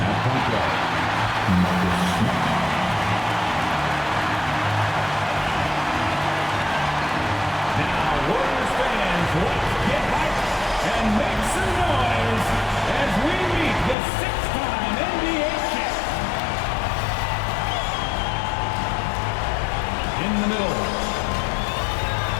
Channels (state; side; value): drops out; right; at 14.0 s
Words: At point guard, Marcus Smart. Now, Warriors fans, let's get hyped and make some noise as we meet the six-time NBA champ. In the middle.